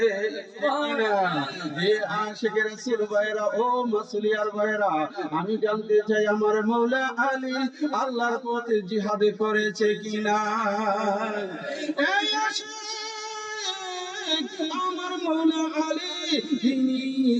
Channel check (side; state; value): both; identical; correlation 1.00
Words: আশিকে রাসূল ভাইরা, ও মাসুলিয়ার ভাইরা, আমি জানতে চাই আমার মওলা আলী আল্লাহর পথে জিহাদে করেছে কিনা? এই আমার মওলা আলী, তিনি